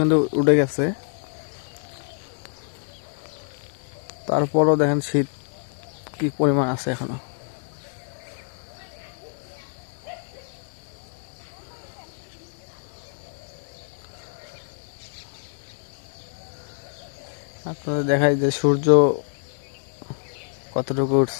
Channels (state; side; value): silent; right; 61 dB below the other